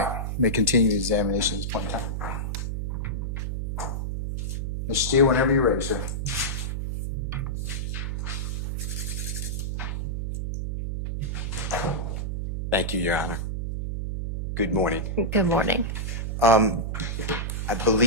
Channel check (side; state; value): right; noise; hum, 2 dB below the sound